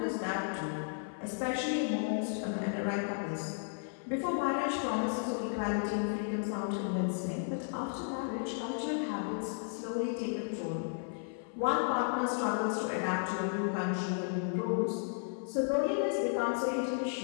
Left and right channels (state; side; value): silent; right; 55 dB below the other